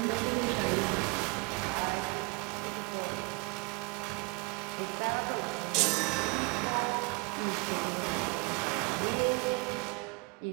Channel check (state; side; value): quieter; left; 28.9 dB